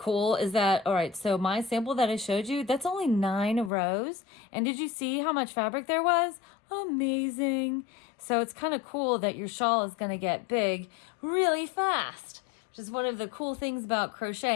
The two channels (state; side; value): drops out; right; at 3.7 s